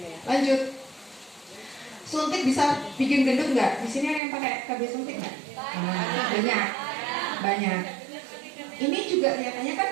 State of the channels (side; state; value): left; drops out; at 4.2 s